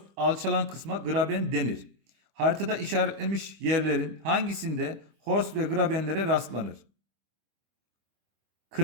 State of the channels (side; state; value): left; late; 25 ms